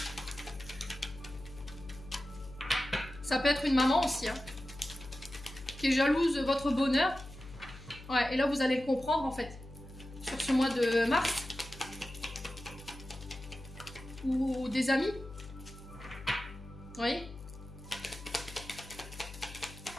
Ça peut être une maman aussi, hein, qui est jalouse de votre bonheur. Ouais, et là, vous allez le comprendre, en fait, sur ce mois de mars. Ou des amis. Vous voyez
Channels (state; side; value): noise; left; hum, 15 dB below the sound